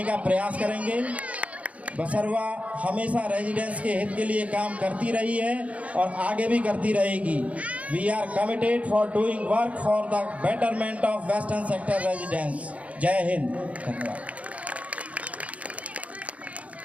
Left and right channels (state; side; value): late; left; 0.066 ms